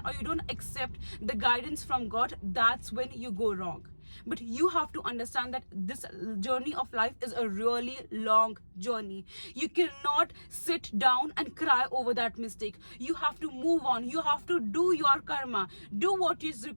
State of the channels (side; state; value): both; inverted; correlation -1.00